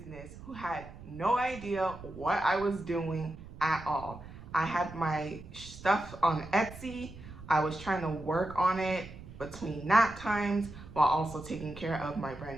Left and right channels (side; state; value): right; noise; rumble, 15 dB below the sound